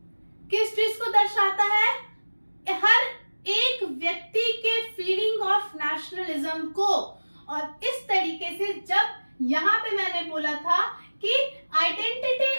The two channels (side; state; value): both; inverted; correlation -1.00